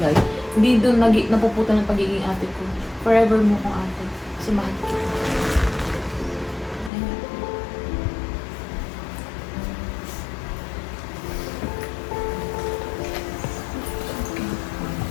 hindi doon napuputa ng pagiging ate ko. Forever mo kong ate. Kasi mahal kita.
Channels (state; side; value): drops out; right; at 6.9 s